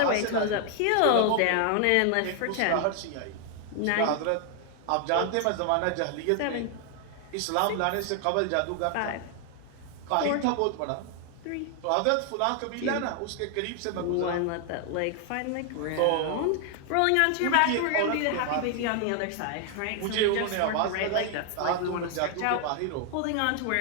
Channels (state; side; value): different; both; correlation 0.00